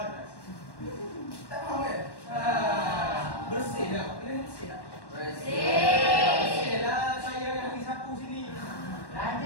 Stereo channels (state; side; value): late; right; 1.1 ms